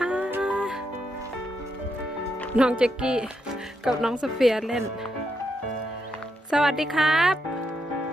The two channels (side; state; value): both; normal; correlation 0.81